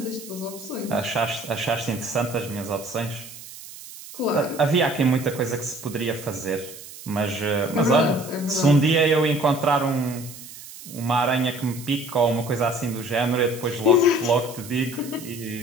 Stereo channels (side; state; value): right; noise; hiss, 15 dB below the sound